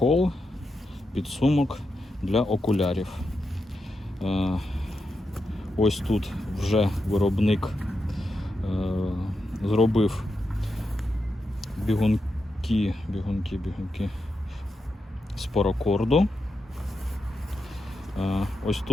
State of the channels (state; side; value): normal; both; correlation 0.87